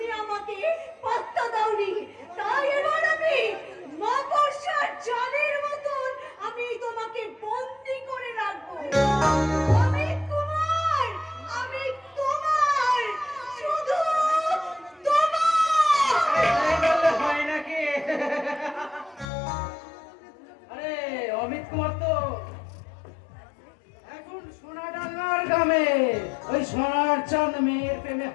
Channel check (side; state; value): right; drops out; at 19.3 s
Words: আমাকে পাত্তা দাওনি। তাই এবার আমি মাকড়সার জালের মতন আমি তোমাকে বন্দি করে রাখবো। অমিত কুমার, আমি তোমার, শুধু তোমার। হয় নাকি? আরে অমিত কুমার তো এখন সোনাডাঙ্গার গ্রামে ওই সোনার চাঁদ মেয়ের প্রেমে